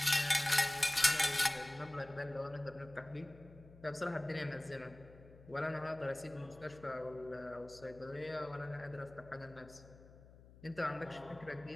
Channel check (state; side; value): noise; left; hum, 21 dB below the sound